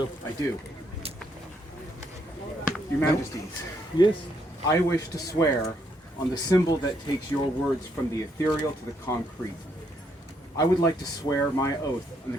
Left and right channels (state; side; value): normal; both; correlation 0.73